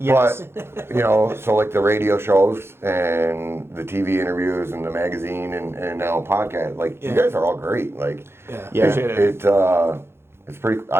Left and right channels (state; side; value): late; left; 0.12 ms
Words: But, so like the radio shows and the TV interviews and the magazine and now podcast, you guys are all great. It's pretty,